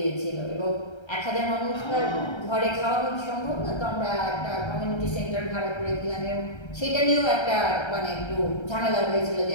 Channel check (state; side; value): late; right; 1.3 ms